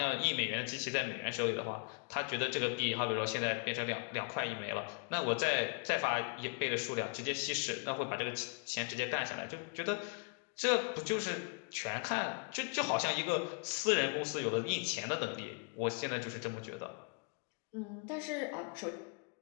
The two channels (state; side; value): quieter; right; 39.3 dB